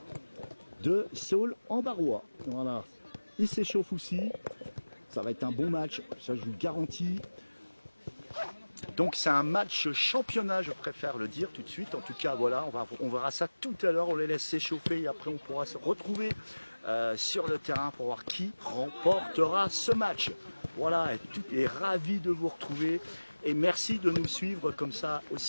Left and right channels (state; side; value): inverted; both; correlation -1.00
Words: de Saulx-en-Barrois. Voilà, ils s'échauffent aussi. Ça va être un bon match, ça je vous le garantis. Donc c'est un match championnat, je préfère le dire tout de suite. En tout cas, voilà, on verra ça tout à l'heure. On les laisse s'échauffer et après on pourra se retrouver sur le terrain pour voir qui remportera ce match. Voilà, et ravi de vous retrouver. Et merci de nous suivre comme ça